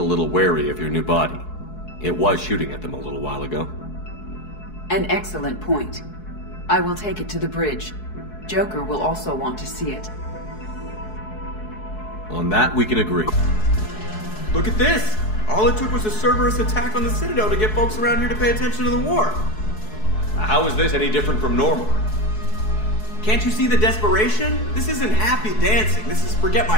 little wary of your new body. It was shooting at them a little while ago. An excellent point. I will take it to the bridge. Joker will also want to see it. On that, we can agree. Look at this! All it took was a Cerberus attack on the Citadel to get folks around here to pay attention to the war. How is this any different from normal? Can't you see the desperation? This isn't happy dancing. This is forget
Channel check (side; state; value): right; late; 4.7 ms